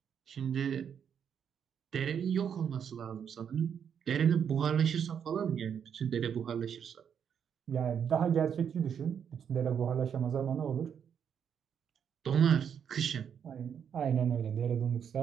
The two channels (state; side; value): quieter; left; 7.9 dB